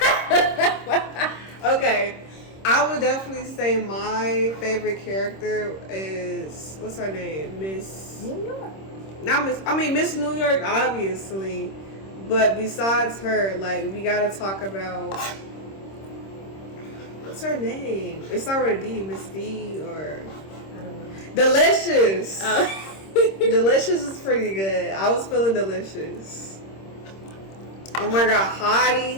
Okay, I would definitely say my favorite character is what's her name, Miss New York. Not Miss. I mean Miss New York, obviously. But besides her, like we gotta talk about what's her name? It's not with a D, Miss D or I don't know. Delicious. Delicious is pretty good. I was feeling Delicious. Oh my God,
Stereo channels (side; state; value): right; late; 26 ms